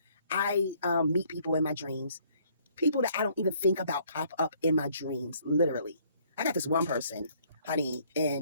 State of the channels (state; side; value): inverted; both; correlation -0.63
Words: I meet people in my dreams. People that I don't even think about pop up in my dreams, literally. I got this one person, honey,